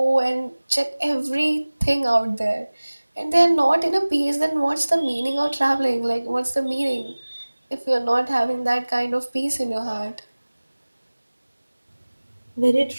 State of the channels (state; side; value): inverted; both; correlation -1.00